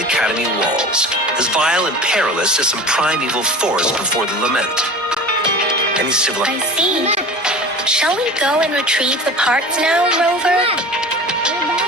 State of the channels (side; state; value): both; normal; correlation 0.36